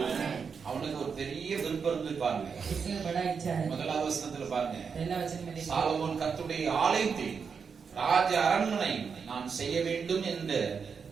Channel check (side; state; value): left; quieter; 6.0 dB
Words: அவனுக்கு ஒரு பெரிய விருப்பம் இருந்து பாருங்க. इसमें बड़ा इच्छा है. முதலாவது வசனத்துல பாருங்க. पहला वचन में देखिए, சாலமோன் கர்த்தருடைய ஆலயத்தை ராஜ அரண்மனை நான் செய்ய வேண்டும்